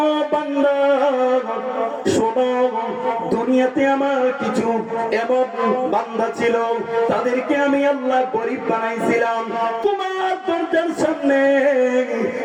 বান্দা শোনো, দুনিয়াতে আমার কিছু এমন বান্দা ছিল, তাদেরকে আমি আল্লাহ গরিব বানাইছিলাম। তোমার দরজার সামনে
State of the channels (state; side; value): identical; both; correlation 1.00